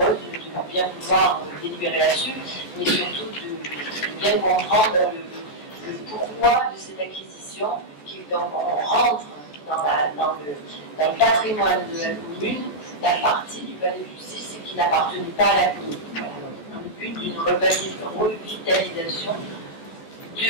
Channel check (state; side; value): late; right; 14 ms